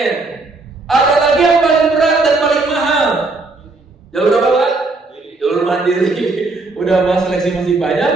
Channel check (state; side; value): quieter; left; 3.4 dB